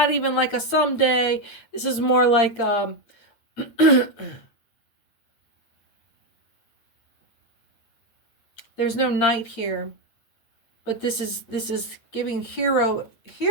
even like a someday. This is more like there's no knight here. But this is giving hero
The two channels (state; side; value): late; right; 9.0 ms